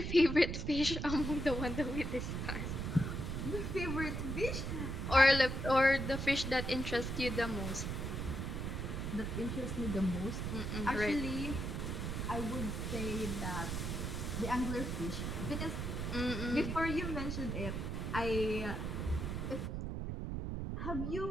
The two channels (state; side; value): noise; right; rumble, 3 dB below the sound